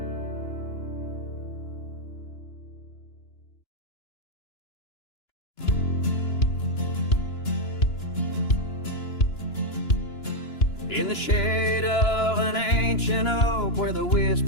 in the shade of an ancient oak, where the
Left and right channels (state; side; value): late; right; 2.9 ms